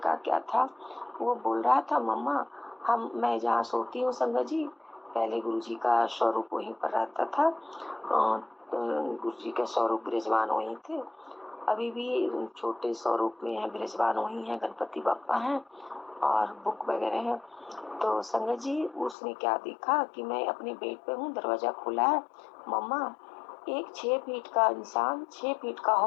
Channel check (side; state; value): right; drops out; at 19.2 s